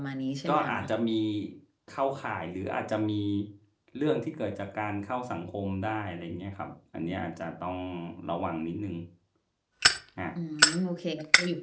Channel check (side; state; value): both; identical; correlation 1.00